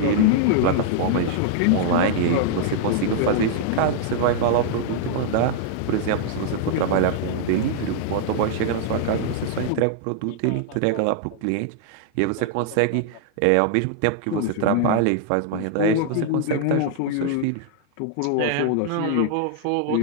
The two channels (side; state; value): both; different; correlation -0.01